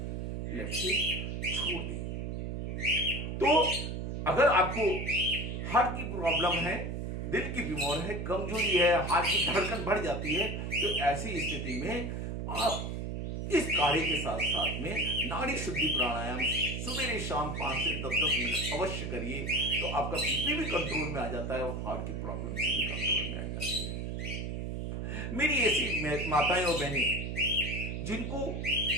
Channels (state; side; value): noise; right; hum, 4 dB below the sound